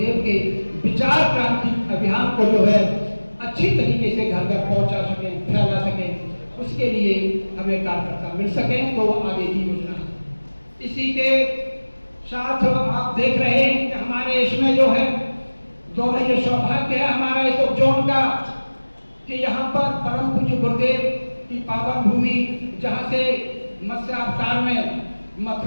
के विचार क्रांति अभियान को जो है अच्छी तरीके से घर घर पहुंचा सके, फैला सके, उसके लिए हमें कार्यकर्ता मिल सके, तो वो आगे की योजना है। इसी के साथ आप देख रहे हैं कि हमारे इसमें जो है दोनों ये सौभाग्य है हमारा इस उपजोन का कि यहाँ पर परम पूज्य गुरुदेव की पावन भूमि, जहाँ से मत्स्य अवतार में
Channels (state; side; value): inverted; both; correlation -1.00